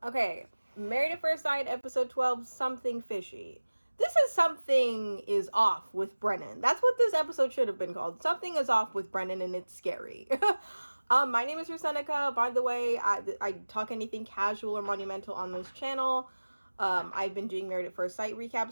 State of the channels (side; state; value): both; inverted; correlation -1.00